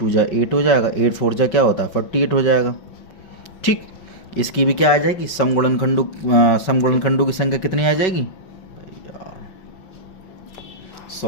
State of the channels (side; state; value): right; late; 5.3 ms